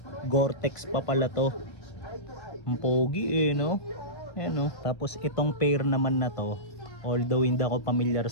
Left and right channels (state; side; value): late; right; 1.5 ms